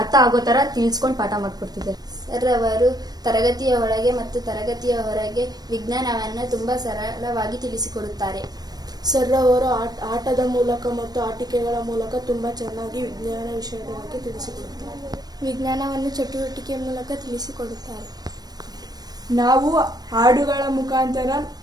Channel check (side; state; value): left; late; 0.19 ms